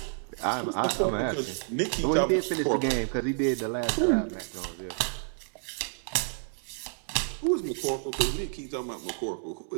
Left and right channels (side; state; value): left; silent; 58 dB below the other